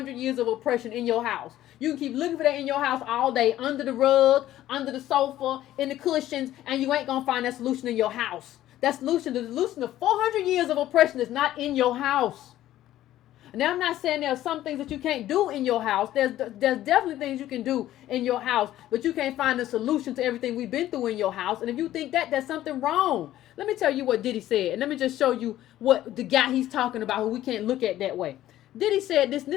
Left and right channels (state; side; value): quieter; right; 13.6 dB